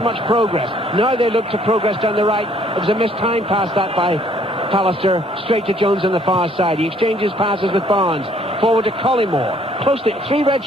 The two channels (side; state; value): both; normal; correlation 0.62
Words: progress. Now they look to progress down the right. It was a missed time pass that by Pallister, straight to Jones on the far side. He exchanges passes with Barnes. Forward to Collymore. Close to 3 red